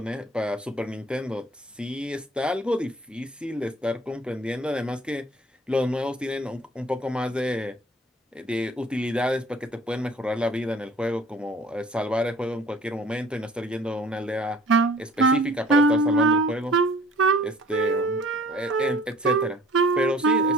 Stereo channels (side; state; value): both; normal; correlation 0.51